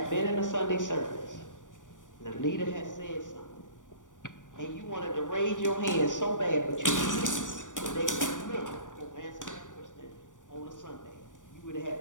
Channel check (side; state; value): right; late; 0.87 ms